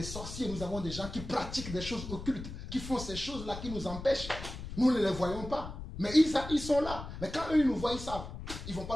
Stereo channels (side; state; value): left; noise; rumble, 9 dB below the sound